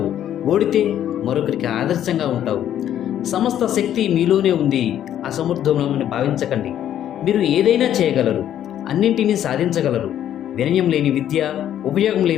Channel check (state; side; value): quieter; right; 10.9 dB